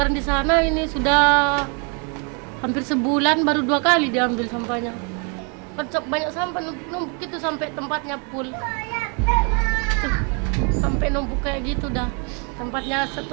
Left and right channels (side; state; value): left; quieter; 36.2 dB